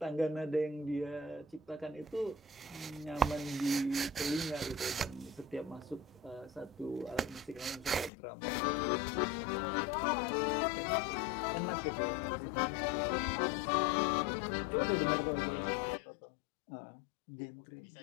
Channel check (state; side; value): drops out; right; at 8.1 s